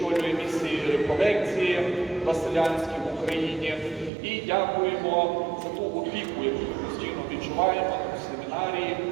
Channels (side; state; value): left; drops out; at 4.1 s